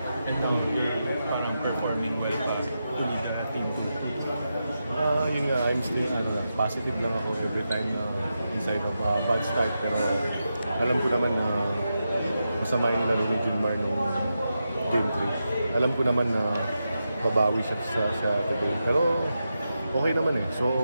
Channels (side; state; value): both; inverted; correlation -0.88